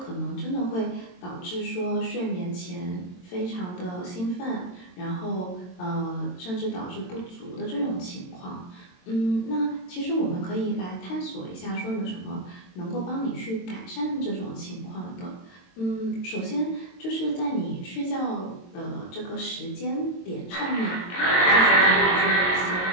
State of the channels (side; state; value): right; late; 22 ms